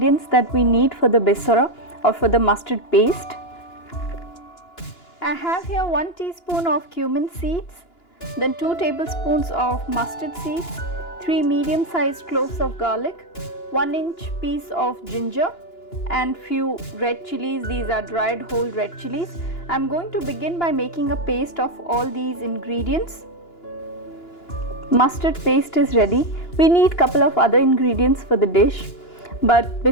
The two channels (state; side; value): late; right; 2.9 ms